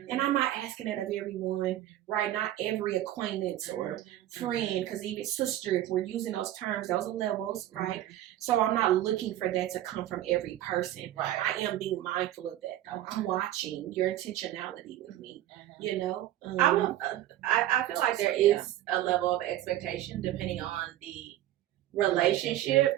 And I'm not asking that of everyone, right? Not every acquaintance or friend, because even sister, if we're using those terms, those are levels, right? So I'm not looking for that to come from every person. Right. I am being mindful of that, though. I'm watching your intentionality with me. I feel like there is a level of expectation depending on the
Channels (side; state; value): left; quieter; 13.5 dB